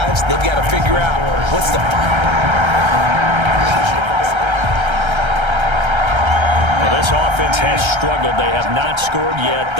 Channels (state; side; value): late; left; 1.3 ms